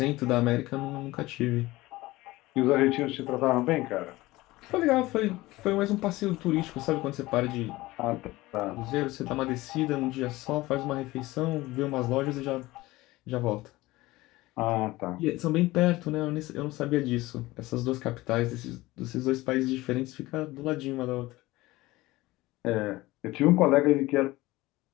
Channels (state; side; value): quieter; right; 19.2 dB